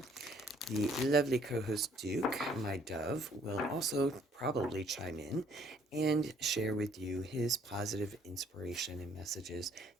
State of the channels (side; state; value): both; normal; correlation 0.63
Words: the lovely co-host Duke, my dove, will also probably chime in and share with you his positive inspiration and messages